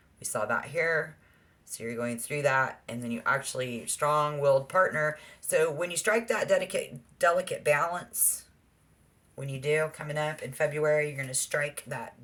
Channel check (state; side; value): identical; both; correlation 1.00